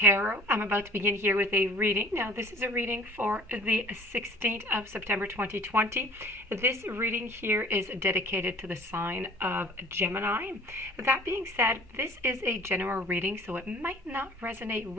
I'm about to begin here with a reading. Now, this is a reading for the 16th of September 2020. This reading here is dedicated to the sign of Gemini. That being said, this is a general reading, so it might not resonate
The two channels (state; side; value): normal; both; correlation 0.49